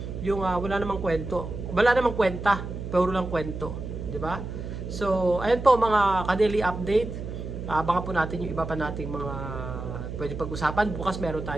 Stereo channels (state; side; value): noise; right; hum, 7 dB below the sound